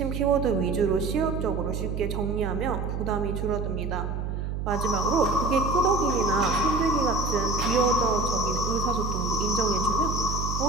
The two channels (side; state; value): right; noise; hum, 3 dB below the sound